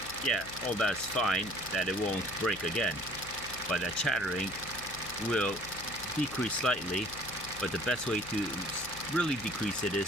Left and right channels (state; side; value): noise; left; hum, 15 dB below the sound